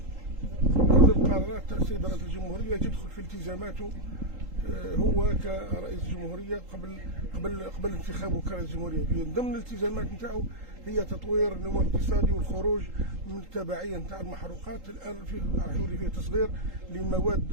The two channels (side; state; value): left; late; 3.8 ms